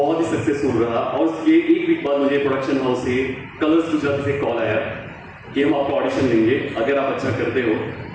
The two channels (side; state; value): both; identical; correlation 1.00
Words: ही सक्सेसफुल रहा। और उसके एक वीक बाद मुझे प्रोडक्शन हाउस से, कलर्स गुजरात से कॉल आया कि हम आपका ऑडिशन लेंगे, अगर आप अच्छा करते हो